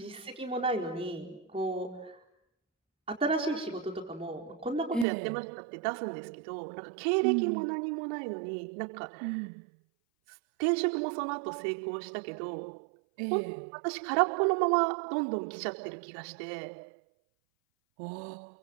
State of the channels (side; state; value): left; drops out; at 5.1 s